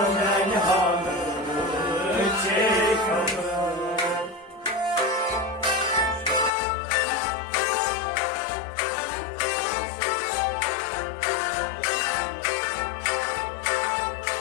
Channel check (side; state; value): right; drops out; at 6.5 s